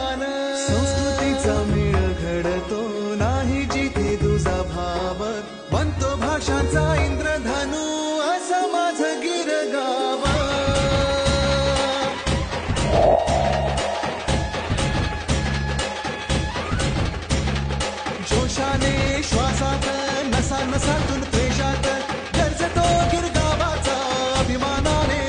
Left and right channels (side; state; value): both; identical; correlation 1.00